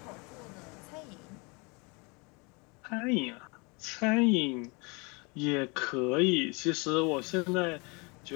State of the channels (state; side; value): quieter; right; 29.9 dB